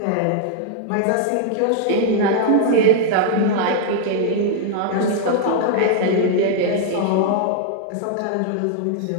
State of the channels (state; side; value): different; both; correlation -0.01